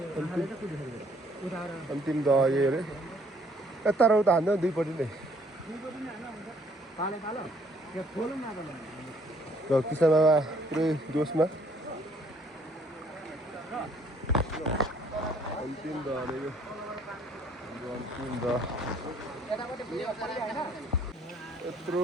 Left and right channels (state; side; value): normal; both; correlation 0.63